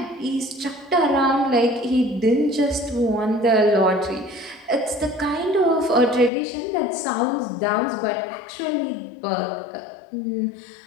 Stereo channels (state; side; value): drops out; right; at 6.3 s